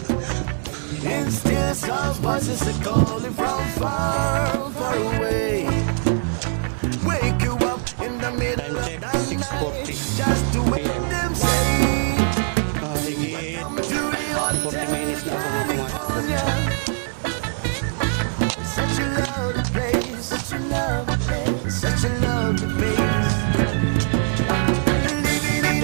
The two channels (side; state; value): left; silent; 60 dB below the other